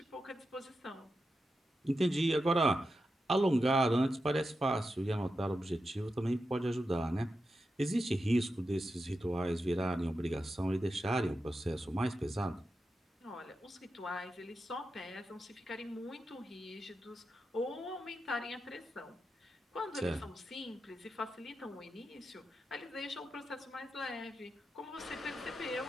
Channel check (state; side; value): normal; both; correlation 0.89